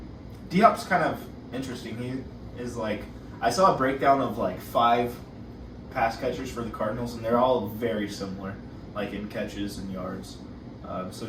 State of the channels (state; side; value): identical; both; correlation 1.00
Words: D-Hop's kind of interesting. He is like, I saw a breakdown of like 5 pass catchers for the Cardinals, and they're all very similar, like in catches and yards. So